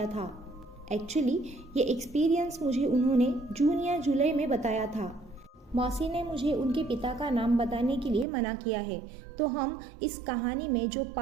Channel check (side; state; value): left; drops out; at 8.2 s